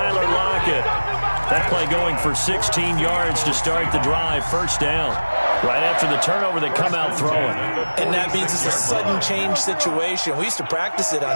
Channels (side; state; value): both; inverted; correlation -1.00